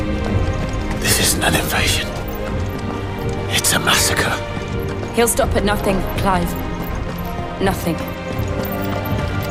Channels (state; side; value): identical; both; correlation 1.00